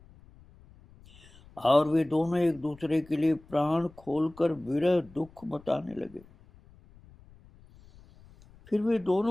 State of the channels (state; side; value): noise; left; rumble, 25 dB below the sound